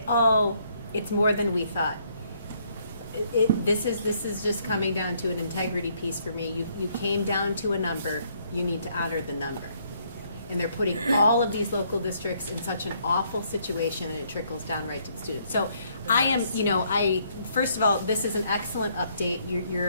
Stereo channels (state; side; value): inverted; both; correlation -0.69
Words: oh, it's more than we thought. This is just coming down to an integrity piece for me. You came down to a number, you need to honor the number. and they're putting all of these local districts in such an awful situation, and it trickles down right to the students. So I am, first of all, this is an excellent update.